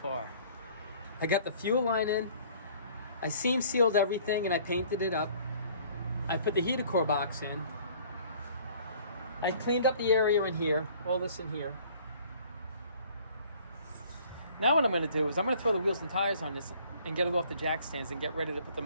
I got the fuel line in. I seam sealed everything and I painted it up. I put the heater core box in. I cleaned up the area in here, all this in here. Now what I'm going to do is I'm going to throw the wheels and tires on this and get it off the jack stands and get ready to put the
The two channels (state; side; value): inverted; both; correlation -0.54